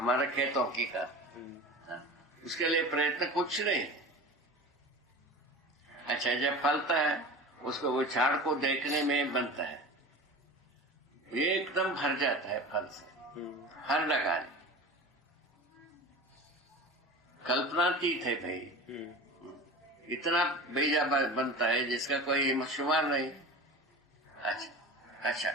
खेतों की का। उसके लिए प्रयत्न कुछ नहीं। अच्छा, जब फलता है उसको वो झाड़ को देखने में बनता है, ये एकदम भर जाता है फल से, हर लगाने कल्पनातीत है भाई। इतना बीजा बनता है जिसका कोई शुमार नहीं। अच्छा,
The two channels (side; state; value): both; normal; correlation 0.34